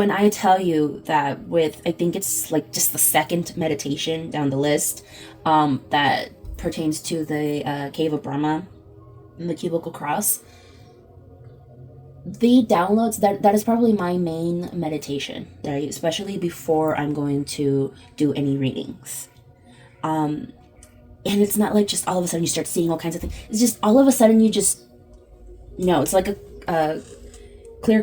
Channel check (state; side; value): identical; both; correlation 1.00